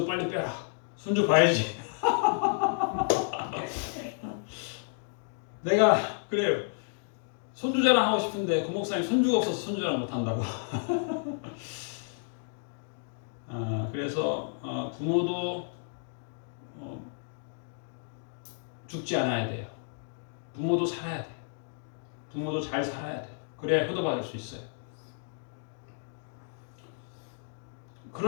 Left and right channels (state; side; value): silent; right; digital silence